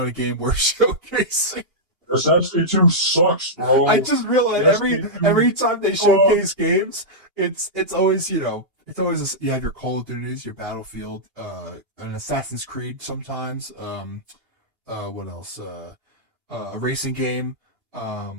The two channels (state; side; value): late; left; 2.8 ms